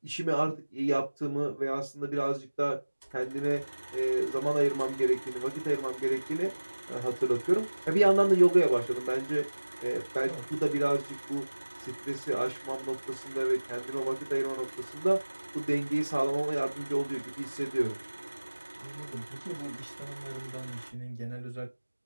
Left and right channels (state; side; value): inverted; both; correlation -1.00